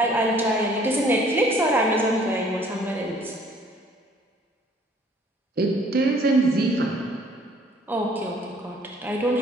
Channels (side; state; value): both; normal; correlation 0.58